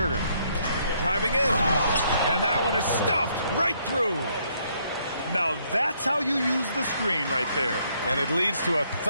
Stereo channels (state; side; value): inverted; both; correlation -0.70